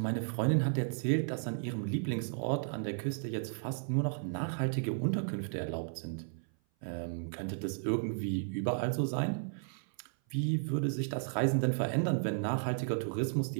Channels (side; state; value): left; silent; 55 dB below the other